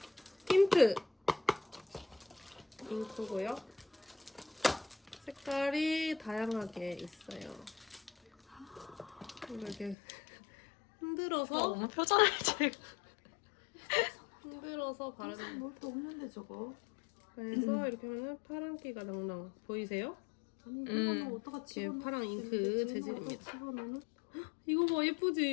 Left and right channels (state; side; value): drops out; right; at 10.0 s